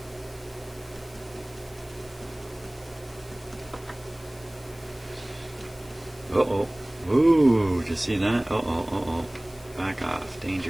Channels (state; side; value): noise; left; hiss, 22 dB below the sound